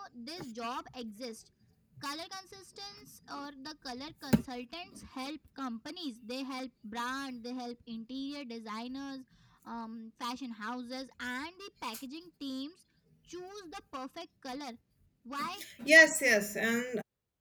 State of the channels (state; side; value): identical; both; correlation 1.00